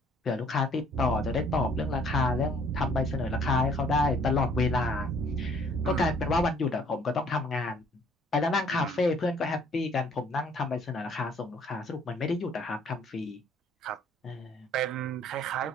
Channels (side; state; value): both; normal; correlation 0.60